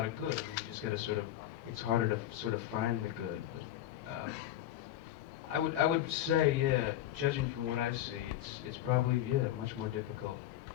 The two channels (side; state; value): right; quieter; 12.7 dB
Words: of good. I mean, you just got to sort of, it's harder to sort of find the good. But I would say, yeah, judging from what I see, it's probably, yeah, much more difficult